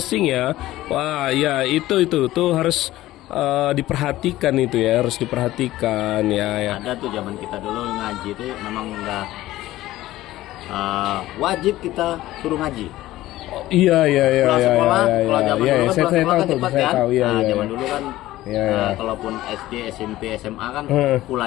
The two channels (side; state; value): right; quieter; 15.9 dB